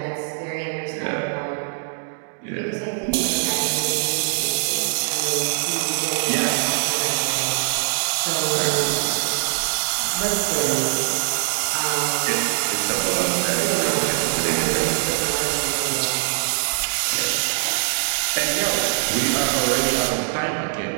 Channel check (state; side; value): silent; left; digital silence